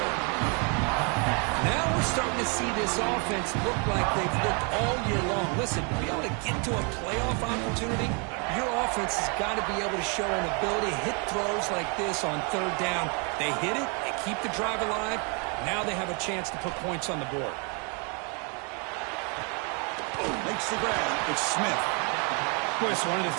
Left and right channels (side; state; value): left; quieter; 35.1 dB